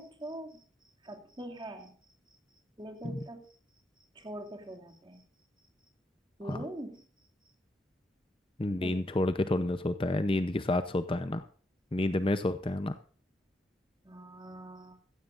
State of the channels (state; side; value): normal; both; correlation 0.79